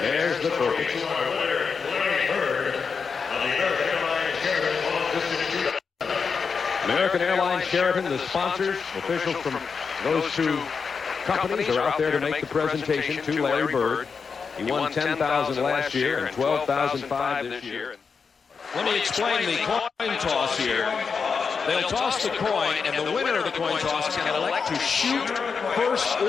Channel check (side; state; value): right; quieter; 5.6 dB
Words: there's the token. American Airlines Sheraton, the sponsors, officials from those two companies are out there to make the presentation to Larry Bird. He won $10,000 last year and $12,500 this year. Let me explain the coin toss here. They'll toss the coin, and the winner of the coin toss can elect to shoot first